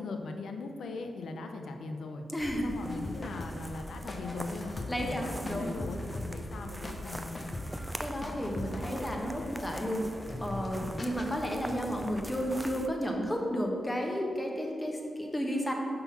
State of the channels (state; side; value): normal; both; correlation 0.89